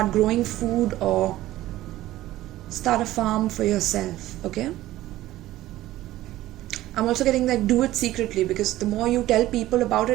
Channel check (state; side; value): quieter; left; 15.5 dB